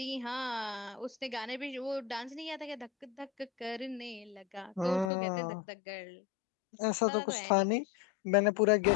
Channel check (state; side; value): drops out; right; at 5.1 s